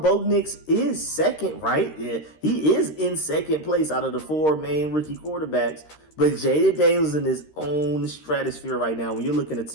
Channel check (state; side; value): late; right; 13 ms